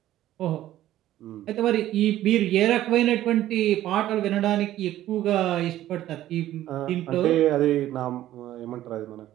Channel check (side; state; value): left; quieter; 13.6 dB